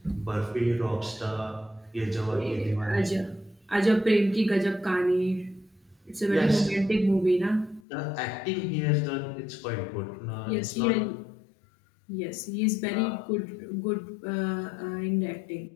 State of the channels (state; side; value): drops out; right; at 7.8 s